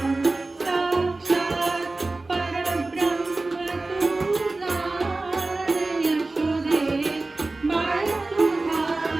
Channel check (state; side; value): quieter; left; 3.2 dB